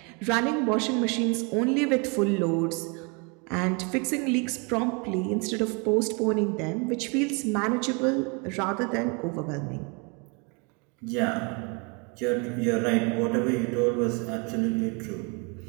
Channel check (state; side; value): quieter; left; 32.6 dB